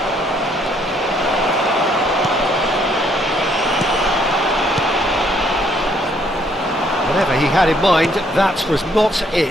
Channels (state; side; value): normal; both; correlation 0.67